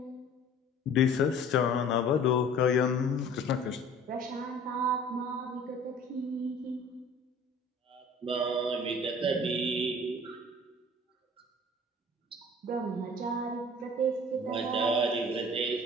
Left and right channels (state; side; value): normal; both; correlation 0.47